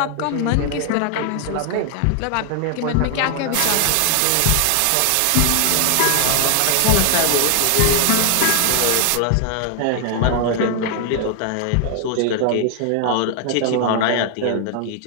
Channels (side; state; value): both; different; correlation 0.00